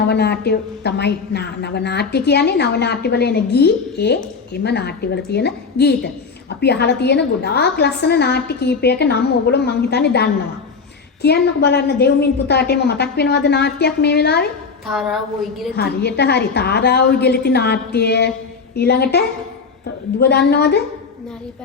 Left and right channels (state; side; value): quieter; right; 5.1 dB